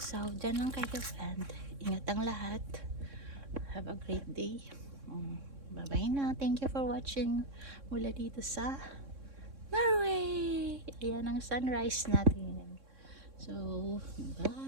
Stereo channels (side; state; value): left; late; 3.6 ms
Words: So, dyan lang kayo, and ingat ang lahat. Have a great day. Bye-bye na. Thank you for watching mula dito sa Norway. Ayan ang sunrise natin. So,